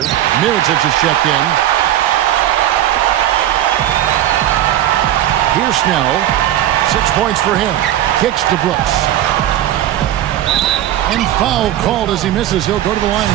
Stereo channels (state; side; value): quieter; left; 12.5 dB